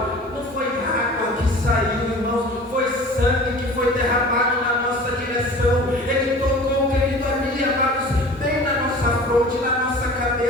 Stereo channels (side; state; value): both; normal; correlation 0.41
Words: não foi água que saiu, irmãos, foi sangue que foi derramado na nossa direção. Ele tocou, querido, ali, amados, bem na nossa fronte, na nossa